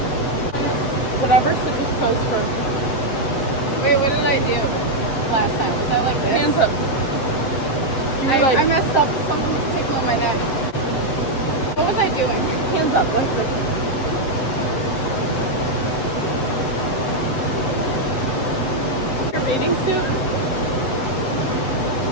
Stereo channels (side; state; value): right; late; 7.5 ms